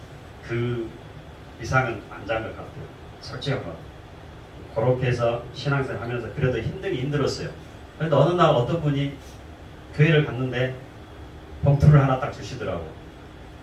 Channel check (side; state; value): both; identical; correlation 1.00